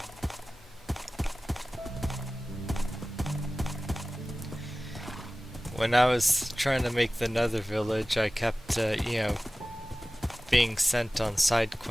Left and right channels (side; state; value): both; normal; correlation 0.97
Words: When I was trying to make the Nether village, I kept, being sent on side